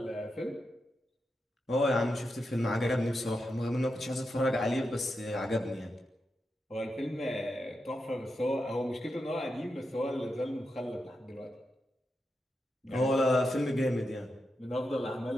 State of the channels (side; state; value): both; normal; correlation 0.87